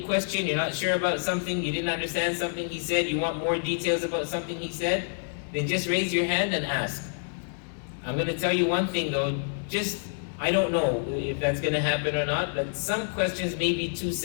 you're not sure about something, you didn't understand something he said, you want more details about something he said, then just raise your hand and ask. I'm going to tell you one thing though, I don't know if that's going to happen or not, but some questions may be too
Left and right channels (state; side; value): silent; right; 60 dB below the other